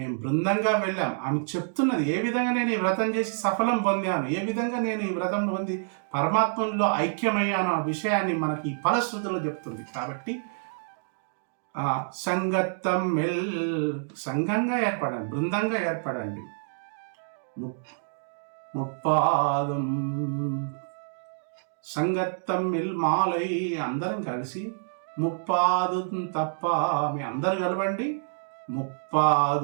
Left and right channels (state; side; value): silent; left; digital silence